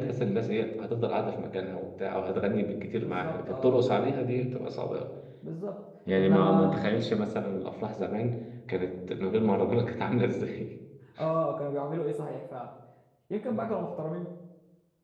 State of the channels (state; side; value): identical; both; correlation 1.00